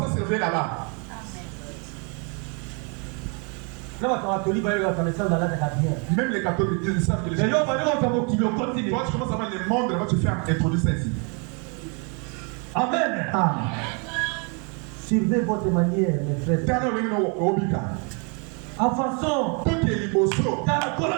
se réveille là-bas? Même les catholiques ils savent que les gens. Toi, tu commences à voir le monde, là, tu fais introduire ça ici. Amen. Suivez votre manière, mes frères. En façon, dans la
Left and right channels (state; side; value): quieter; left; 35.5 dB